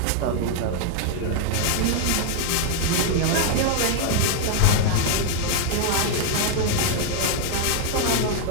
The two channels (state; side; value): different; both; correlation 0.00